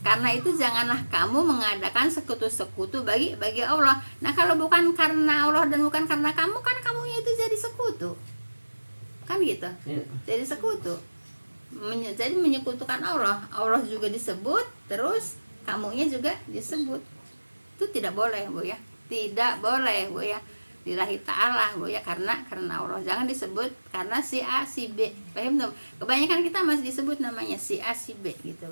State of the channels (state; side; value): inverted; both; correlation -1.00